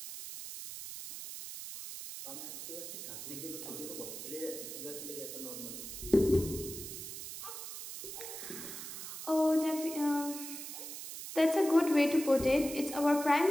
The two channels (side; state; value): right; noise; hiss, 9 dB below the sound